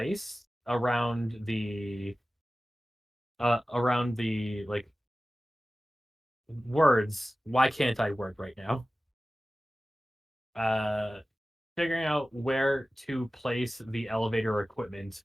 around the like words. Why can't I word right now? Uh, Figuring out where to place the elevator equipment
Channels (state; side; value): normal; both; correlation 0.96